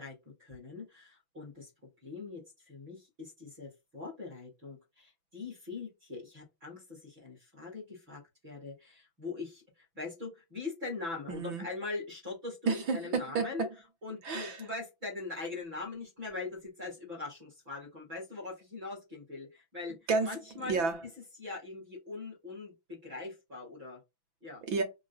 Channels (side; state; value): left; late; 6.0 ms